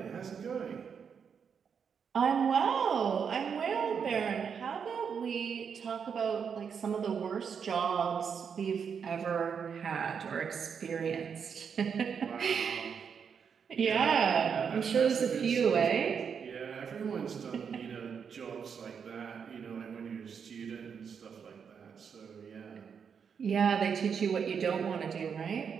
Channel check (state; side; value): quieter; left; 6.8 dB